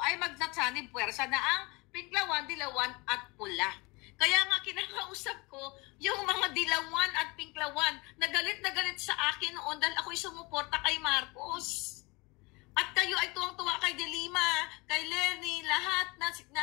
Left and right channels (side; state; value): right; quieter; 25.7 dB